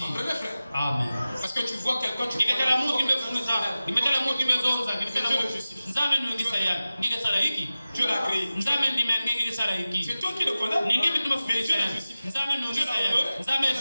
Amen. Parce que tu vois quelqu'un, tu vois Dieu l'a créé. C'est toi qui le condamnes. Mais Dieu l'a justifié.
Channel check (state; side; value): inverted; both; correlation -0.96